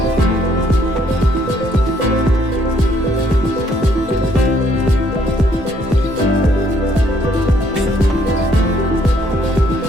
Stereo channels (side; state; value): both; normal; correlation 0.67